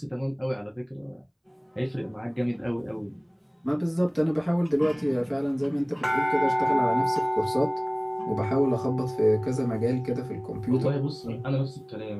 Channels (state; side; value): identical; both; correlation 1.00